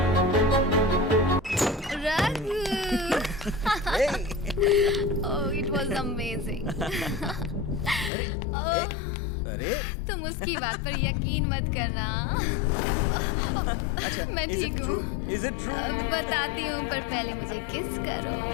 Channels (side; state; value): right; drops out; at 8.1 s